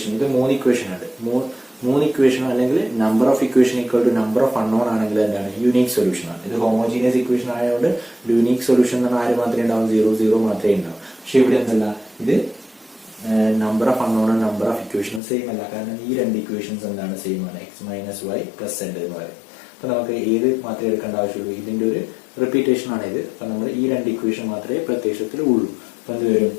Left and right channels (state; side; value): drops out; right; at 15.2 s